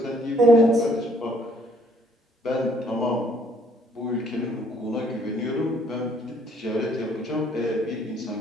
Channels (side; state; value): both; normal; correlation 0.63